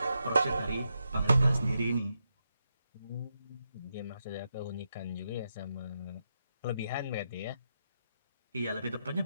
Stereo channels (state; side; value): inverted; both; correlation -0.84